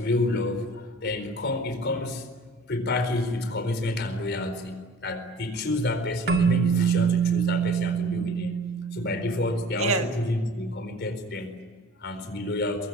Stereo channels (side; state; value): both; normal; correlation 0.46